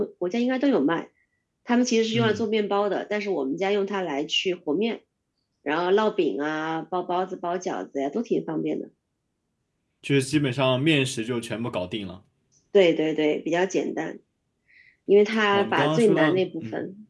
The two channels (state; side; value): identical; both; correlation 1.00